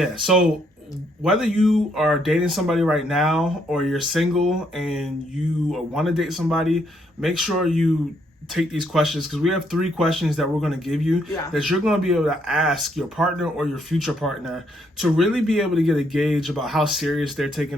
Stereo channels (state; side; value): normal; both; correlation 0.72